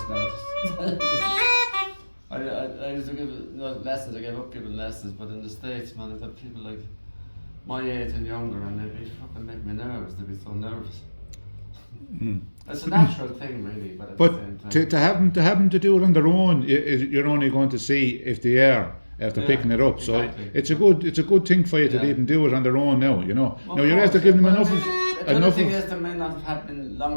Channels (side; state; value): both; inverted; correlation -1.00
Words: now. I used to give lessons. I gave up giving lessons, but in the States, man, I've got people like my age and younger, and they'd be fucking make me nervous. They'd be so nervous. It's a natural thing, really, but at the same time. To have them to do it on their own, you're only going to see if they are after picking it up. Exactly. So it's a good thing for you to even do it on their own now. You know. Well, now you're after giving them enough. The other thing is they may not have been